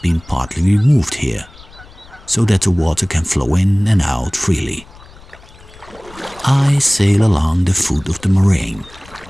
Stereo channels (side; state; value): left; noise; rumble, 22 dB below the sound